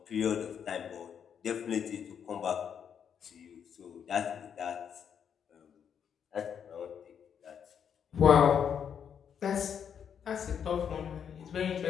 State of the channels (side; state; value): right; quieter; 7.9 dB